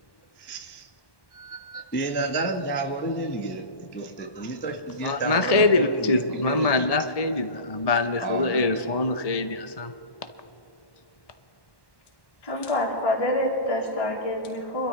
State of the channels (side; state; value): right; late; 1.1 ms